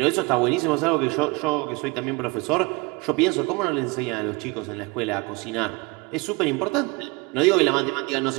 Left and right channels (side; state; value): left; quieter; 26.6 dB